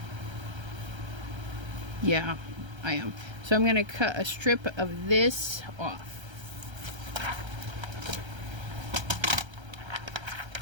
yeah, I am. So I'm going to cut a strip of this off.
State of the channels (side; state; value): left; late; 1.3 ms